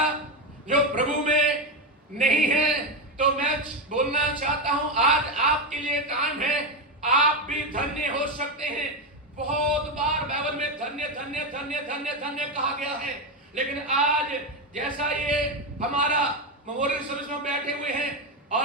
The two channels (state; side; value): normal; both; correlation 0.11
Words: जो प्रभु में नहीं है? तो मैं बोलना चाहता हूं, आज आपके लिए टाइम है, आप भी धन्य हो सकते हैं। बहुत बार बाइबल में धन्य धन्य धन्य धन्य धन्य कहा गया है, लेकिन आज जैसा ये हमारा मेमोरियल सर्विस में बैठे हुए हैं